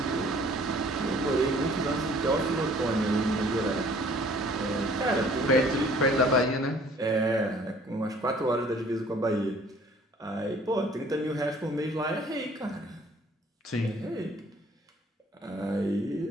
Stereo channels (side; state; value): both; normal; correlation 0.55